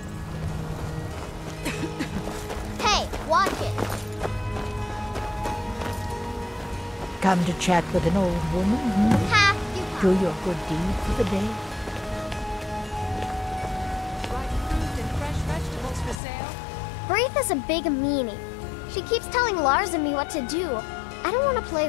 Hey, watch it. Come to chat with an old woman? Ha! Do your good deed for the day. Braith is a big meanie. She keeps telling Lars and me what to do. I don't want to play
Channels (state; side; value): drops out; right; at 16.2 s